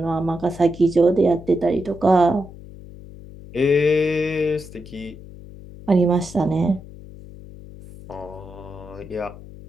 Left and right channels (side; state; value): left; noise; hum, 17 dB below the sound